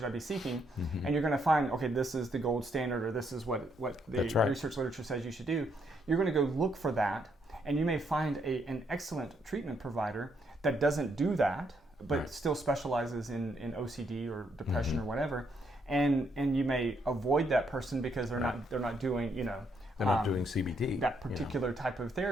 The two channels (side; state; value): both; normal; correlation 0.74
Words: I be seeking? And you're going to find, okay, this is the gold standard, or this is what the research literature says you should do. You're going to go look for that, and you may find an excellent treatment provider that doesn't do that, but still specializes in OCD or depression or whatever, and you may avoid that person because they're not doing, they're not doing CBT, that particular type of